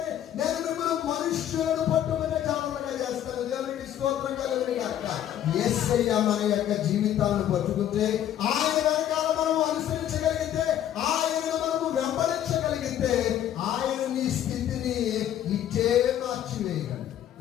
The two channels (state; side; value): quieter; right; 11.1 dB